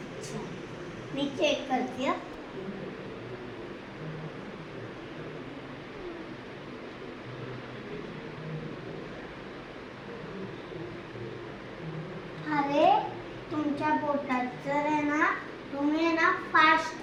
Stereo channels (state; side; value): identical; both; correlation 1.00